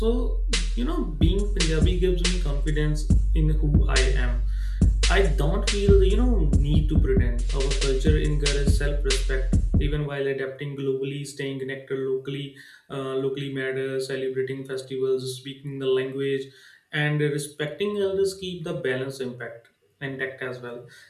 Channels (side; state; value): both; identical; correlation 1.00